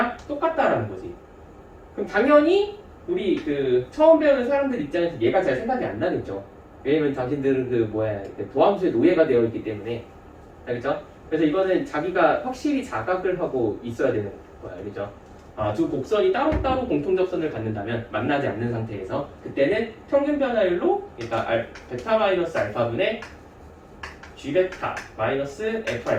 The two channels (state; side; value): identical; both; correlation 1.00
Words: 똑같다라는 거지. 그럼 당연히 우리 그 처음 배우는 사람들 입장에서 얘가 잘 생각이 안 나겠죠. 왜냐면 당신들은 도함수에 노예가 되어 있기 때문에. 알겠죠? 그래서 이거는 자기가 확실히 자각을 하고 있어야 되는 거야. 알겠죠? 두 곡선이 따로따로 공통접선을 갖는다면 만나지 않는 상태에서 그때는 평균 변화율로 그러니까 베타 마이너스 알파분의 g 베타 마이너스 f